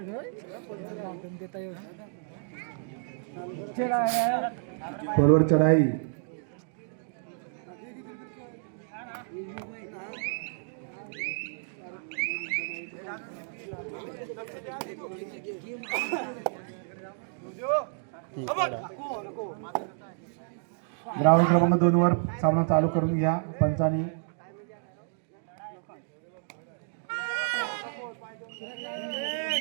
खोलवर चढाई. ग्राउंड क्रमांक 2 वर सामना चालू करून घ्या पंचानी.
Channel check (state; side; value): silent; left; digital silence